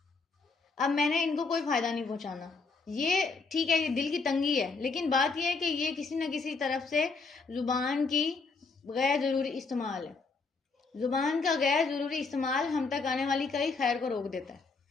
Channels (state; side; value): quieter; right; 4.3 dB